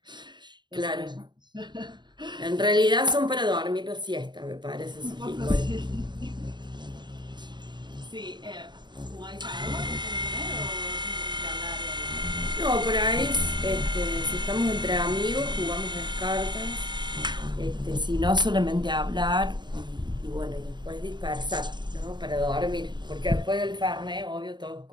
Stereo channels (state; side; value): late; left; 0.22 ms